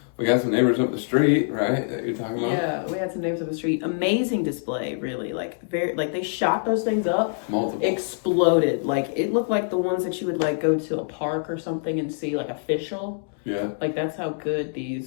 we got some neighbors up the street, right? That you're talking about? Yeah, we had some neighbors up the street. Amazing display, really. They shot those things up. Multiple. Exploded. It looked like the ones that you would go to a park or something and see official. Yeah. That's how good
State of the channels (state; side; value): silent; right; digital silence